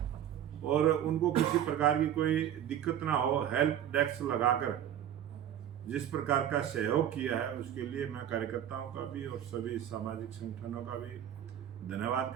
और उनको किसी प्रकार की कोई दिक्कत ना हो, हेल्प डेस्क लगाकर जिस प्रकार का सहयोग किया है, उसके लिए मैं कार्यकर्ताओं का भी और सभी सामाजिक संगठनों का भी धन्यवाद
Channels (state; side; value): quieter; left; 10.5 dB